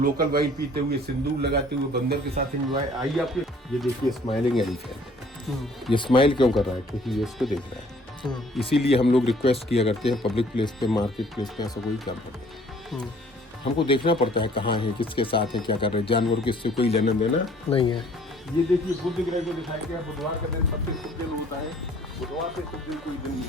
वाइन पीते हुए, सिंदूर लगाते हुए, बंदर के साथ एंजॉय। आइए आपके, ये देखिए स्माइलिंग एलिफेंट। ये स्माइल क्यों कर रहा है? क्योंकि ये इसको देख रहा है। इसीलिए हम लोग रिक्वेस्ट किया करते हैं, पब्लिक प्लेस पे, मार्केट प्लेस पे ऐसा कोई काम करते हैं, हमको देखना पड़ता है कहाँ है, किसके साथ है, क्या कर रहे हैं। जानवर को इससे कोई लेना देना नहीं है। ये देखिए, बुद्ध ग्रह को दिखाया गया। बुधवार का दिन सबसे शुभ दिन होता है, बुधवार से शुभ दिन कोई दिन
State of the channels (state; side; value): normal; both; correlation 0.57